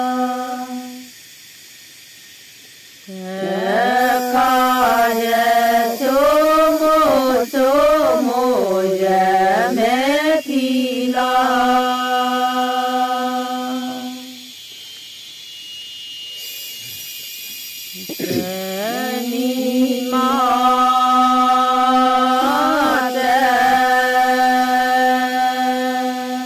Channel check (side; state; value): both; identical; correlation 1.00